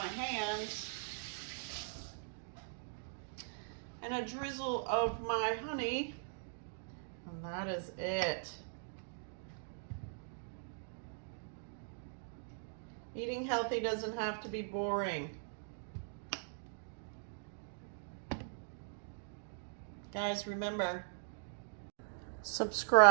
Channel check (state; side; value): silent; left; digital silence